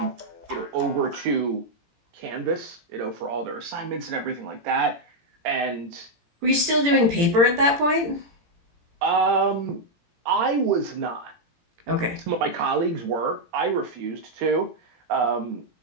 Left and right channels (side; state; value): left; late; 17 ms